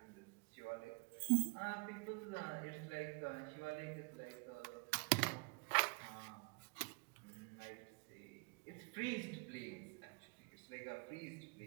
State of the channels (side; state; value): left; quieter; 33.0 dB